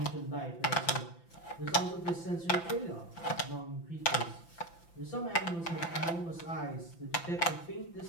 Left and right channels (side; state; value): right; late; 5.9 ms